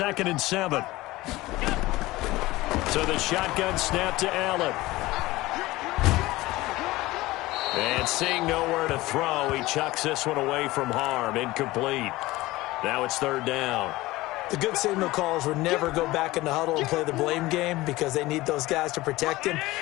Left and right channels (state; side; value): quieter; right; 19.0 dB